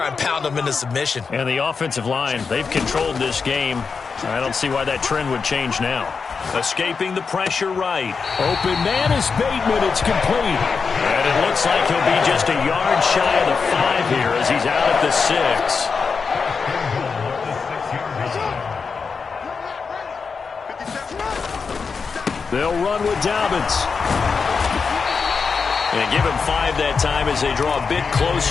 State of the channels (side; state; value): right; quieter; 5.3 dB